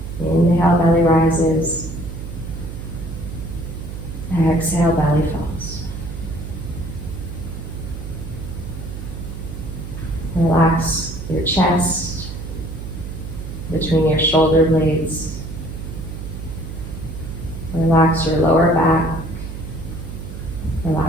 Inhale, belly rises. Exhale, belly falls. Relax your chest between your shoulder blades. Relax your lower back.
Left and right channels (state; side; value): noise; right; hum, 9 dB below the sound